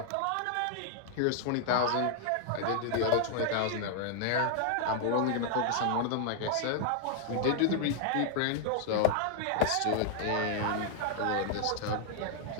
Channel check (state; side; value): different; both; correlation 0.00